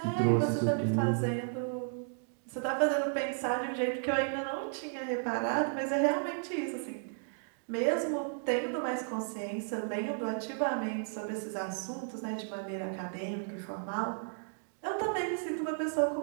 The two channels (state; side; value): silent; left; digital silence